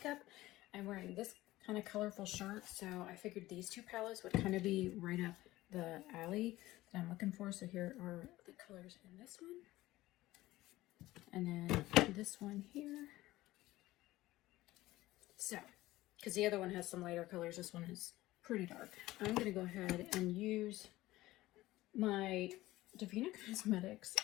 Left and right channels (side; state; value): right; quieter; 17.2 dB